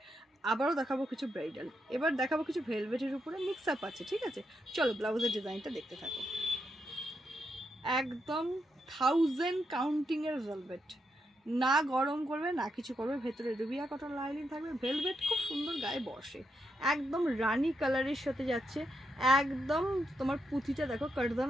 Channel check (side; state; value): both; normal; correlation 0.82